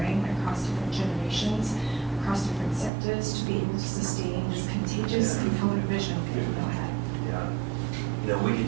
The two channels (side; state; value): left; drops out; at 2.9 s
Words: across different generations, across different sectors, to be able to sustain this contagious and forward vision people know had? Yeah. You know, we